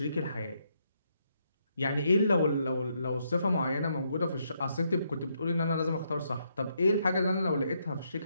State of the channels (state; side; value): inverted; both; correlation -0.76